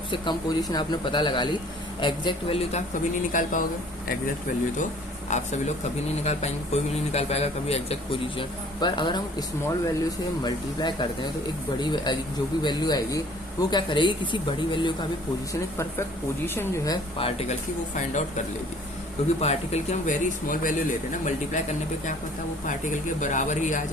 कम पोजीशन आपने पता लगा ली, एग्जैक्ट वैल्यू तो आप कभी नहीं निकाल पाओगे, एग्जैक्ट वैल्यू तो आप सभी लोग कभी नहीं निकाल पाएंगे, कोई भी नहीं निकाल पाएगा कभी एग्जैक्ट पोजीशन। पर अगर हम स्मॉल वैल्यू से मल्टीप्लाई करते हैं तो एक बड़ी जो भी वैल्यू आएगी वो क्या करेगी, किसी बड़ी वैल्यू का भी पोजीशन, एक परफेक्ट पोजीशन जो है पार्टिकल की वो फाइंड आउट कर लेगी। क्योंकि पार्टिकल की हम वेरी स्मॉल वैल्यू लेते हैं ना, मल्टीप्लाई करने पे क्या पता वो पार्टिकल के बराबर ही आ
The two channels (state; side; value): normal; both; correlation 0.53